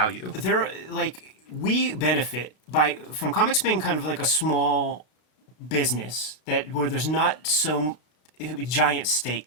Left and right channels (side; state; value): right; late; 33 ms